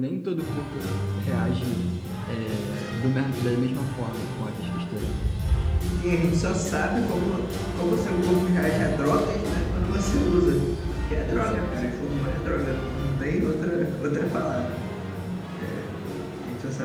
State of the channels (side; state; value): both; identical; correlation 1.00